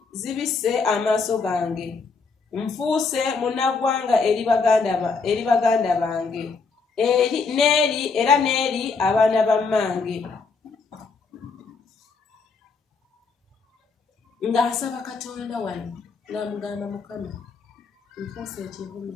zibisse amaaso gange, nfuuse munnaggwanga eri baganda bange, era n'eri abaana ba mmange. ng'asaba Katonda wano ng'amugamba Mukama nfuuse ekivumi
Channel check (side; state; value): right; quieter; 4.6 dB